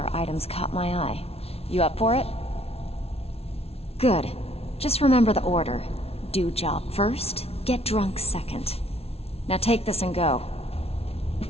item's caught my eye. You up for it? Good. Just remember the order. Do job first, get drunk second. Now take this and go.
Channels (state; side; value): late; right; 0.30 ms